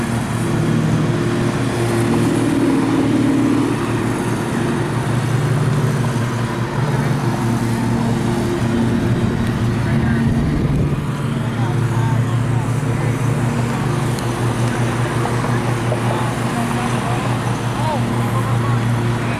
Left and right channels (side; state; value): both; identical; correlation 1.00